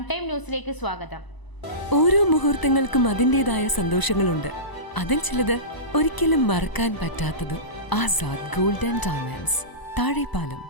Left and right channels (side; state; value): right; late; 1.0 ms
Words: time ന്യൂസിലേക്ക് സ്വാഗതം. ഓരോ മുഹൂർത്തങ്ങൾക്കും അതിൻ്റെതായ സന്തോഷങ്ങളുണ്ട്. അതിൽ ചിലത് ഒരിക്കലും മറക്കാൻ പറ്റാത്തതും. Azad gold and diamonds, Thazhepalam,